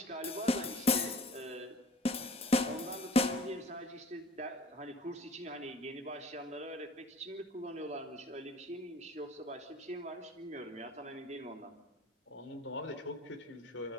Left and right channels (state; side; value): normal; both; correlation 0.47